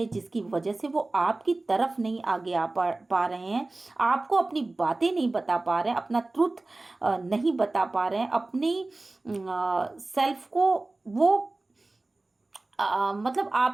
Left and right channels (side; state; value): left; quieter; 3.1 dB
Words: जिसकी वजह से वो आपकी तरफ नहीं आगे आ पा रहे हैं, आपको अपनी बातें नहीं बता पा रहे हैं, अपना ट्रुथ नहीं बता पा रहे हैं, अपनी सेल्फ को वो मतलब